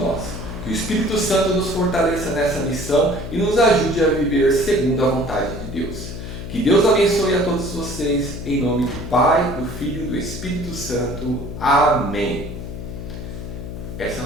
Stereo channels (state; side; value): noise; left; hum, 9 dB below the sound